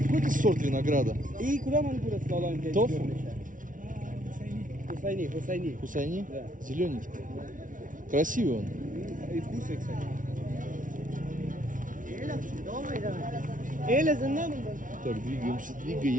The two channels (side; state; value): left; late; 0.38 ms